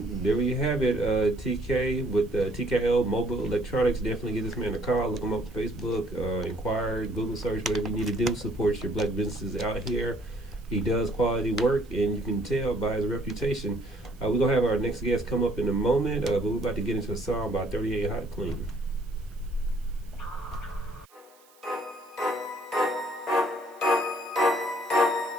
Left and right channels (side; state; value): right; noise; hiss, 29 dB below the sound